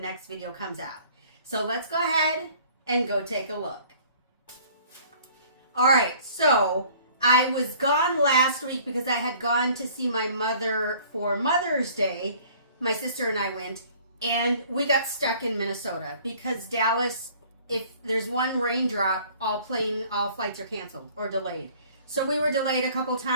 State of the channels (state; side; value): inverted; both; correlation -0.53